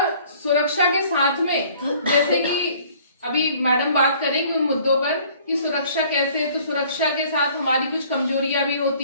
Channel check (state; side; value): inverted; both; correlation -0.55